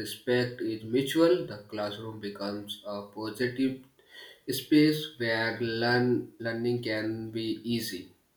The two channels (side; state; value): both; identical; correlation 1.00